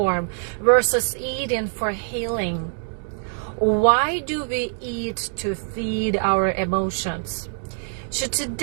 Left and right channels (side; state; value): left; silent; 63 dB below the other